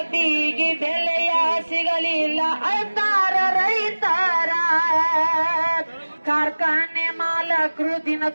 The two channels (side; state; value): both; inverted; correlation -1.00